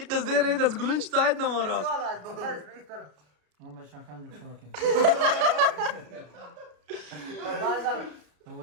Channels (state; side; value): late; left; 33 ms